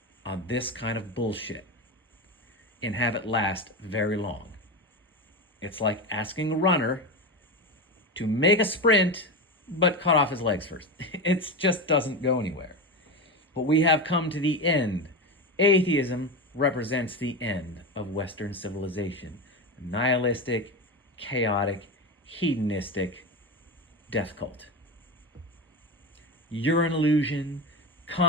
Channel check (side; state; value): both; normal; correlation 0.19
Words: on this kind of bullshit and have it last very long. It's like asking a runner to make a sprint, but cut off his legs first. It just doesn't go anywhere. But we have come to the end. Atheism represents the end of Western civilization. A nihilistic, chaotic, hedonistic death cult. You're an illusion.